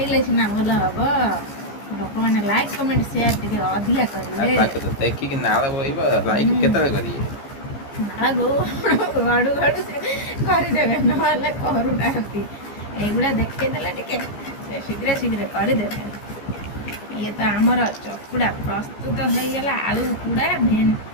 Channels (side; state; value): right; late; 15 ms